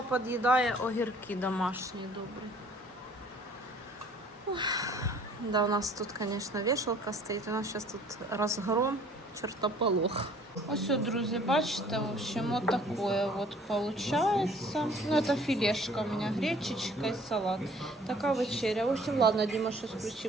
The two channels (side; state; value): both; normal; correlation 0.55